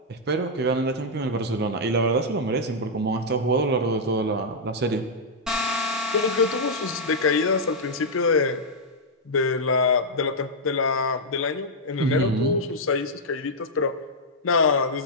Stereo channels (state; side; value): normal; both; correlation -0.06